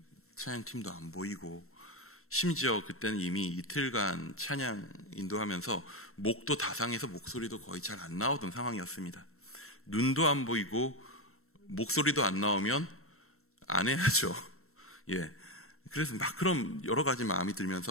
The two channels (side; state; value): right; late; 0.63 ms